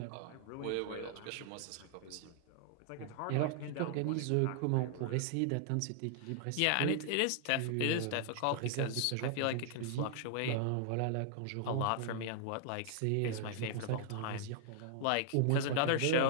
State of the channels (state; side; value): different; both; correlation -0.01